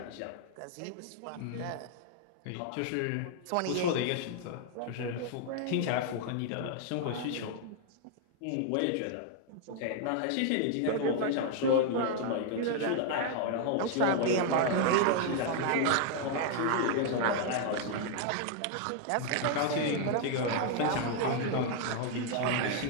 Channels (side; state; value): both; different; correlation 0.00